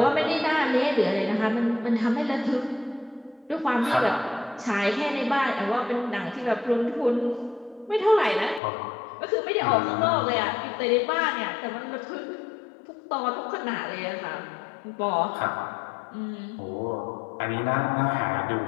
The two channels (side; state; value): right; drops out; at 8.6 s